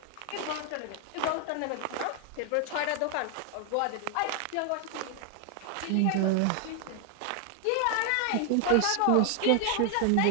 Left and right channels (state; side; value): different; both; correlation 0.00